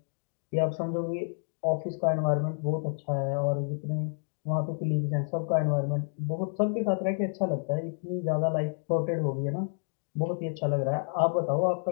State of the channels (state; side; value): silent; right; digital silence